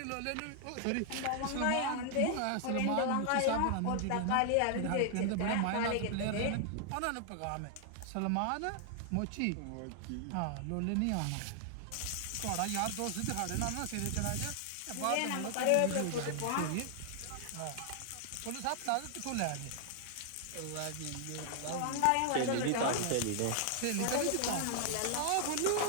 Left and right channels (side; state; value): both; different; correlation 0.00